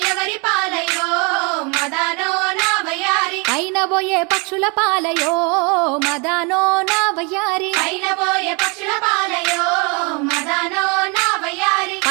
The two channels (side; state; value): left; quieter; 31.7 dB